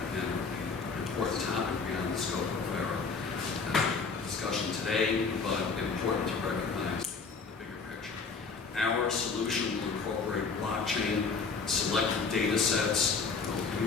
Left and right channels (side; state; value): right; quieter; 4.8 dB